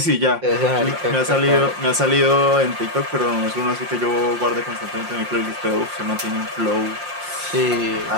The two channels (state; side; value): late; left; 5.7 ms